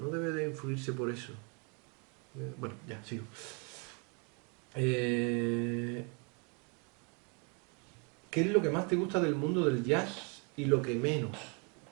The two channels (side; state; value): left; quieter; 34.7 dB